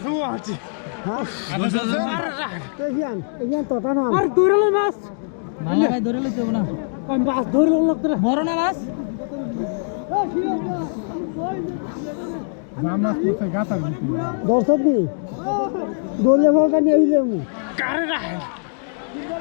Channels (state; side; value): silent; right; digital silence